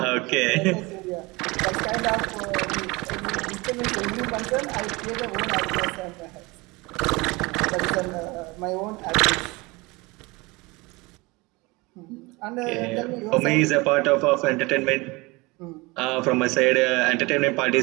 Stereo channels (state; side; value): quieter; left; 24.3 dB